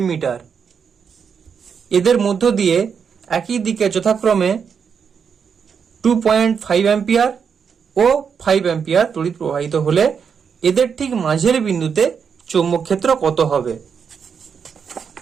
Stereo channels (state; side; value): quieter; left; 6.6 dB